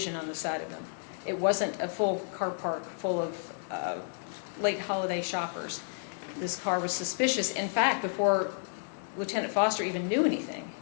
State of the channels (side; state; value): right; silent; digital silence